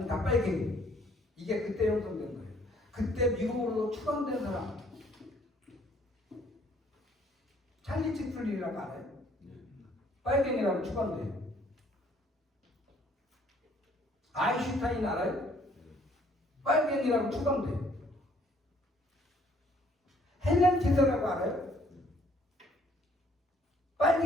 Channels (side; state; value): both; normal; correlation 0.62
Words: 다 빨갱이. 이게 그때 형성된 거예요. 그때 미국으로 추방된 사람 찰리 채플린이라고 알아요? 빨갱이라고 추방돼요. 아인슈타인 알아요? 빨갱이라고 추방돼요. 헬렌 케서라고 알아요?